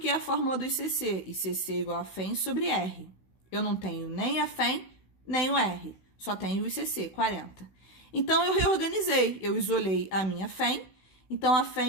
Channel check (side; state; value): right; late; 16 ms